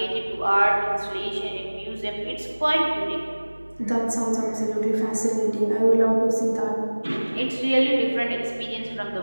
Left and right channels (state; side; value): inverted; both; correlation -1.00